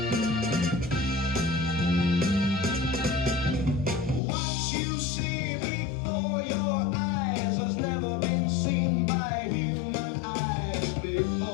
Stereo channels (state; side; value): drops out; right; at 4.2 s